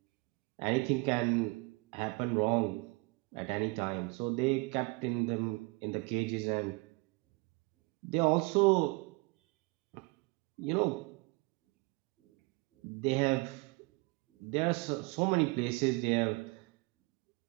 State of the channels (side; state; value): left; quieter; 27.5 dB